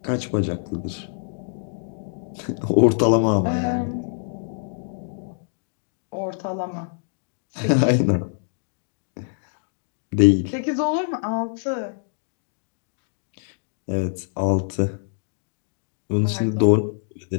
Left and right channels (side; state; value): right; silent; digital silence